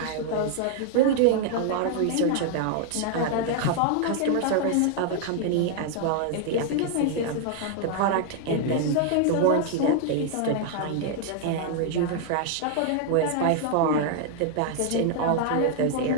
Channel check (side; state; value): both; different; correlation 0.00